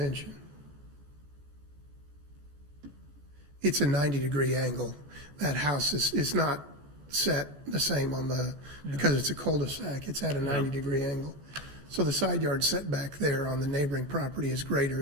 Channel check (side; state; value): left; late; 14 ms